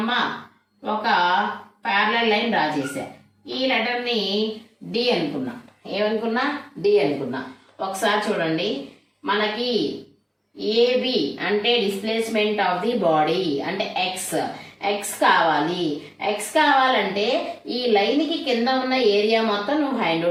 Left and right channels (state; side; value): identical; both; correlation 1.00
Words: ఒక ప్యారలల్ లైన్ డ్రా చేశా. ఈ లెటర్ని డి అనుకున్నా. ఏమనుకున్నా, డి అనుకున్నా. ఒకసారి చూడండి, మనకి ఏబి అంటే డిస్ప్లేస్మెంట్ ఆఫ్ ది బాడీ అంటే ఎక్స్. ఎక్స్ కావాలి. ఎక్స్ కావాలంటే ఈ లైన్కి కింద ఉన్న ఏరియా మొత్తం నువ్వు ఫైండ్